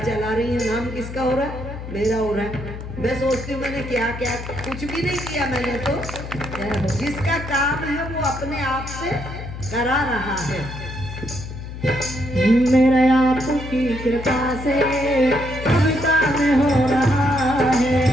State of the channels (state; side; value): noise; left; hum, 10 dB below the sound